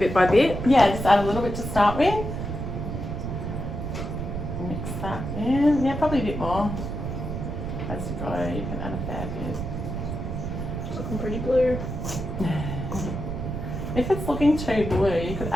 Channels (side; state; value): right; noise; rumble, 4 dB below the sound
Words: by bit. Yeah, just add a little bit to start with. Mix that in. Yeah, probably a bit more. As you go, you can add a fair bit. It's looking pretty blue. If it's looking too blue, you could